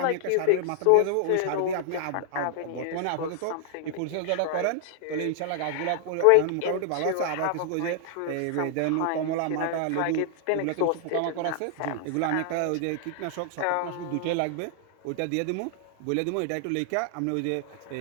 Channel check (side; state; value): both; different; correlation 0.00